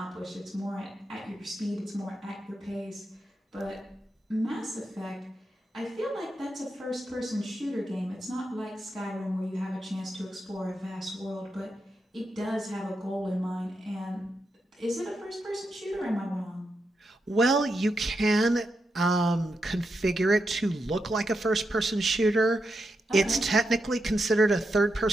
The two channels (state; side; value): normal; both; correlation 0.85